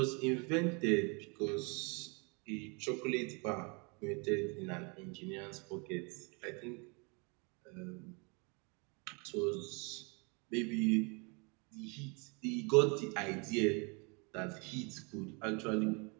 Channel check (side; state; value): left; quieter; 32.2 dB